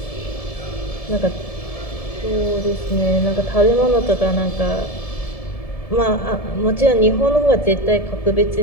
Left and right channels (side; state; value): right; late; 1.7 ms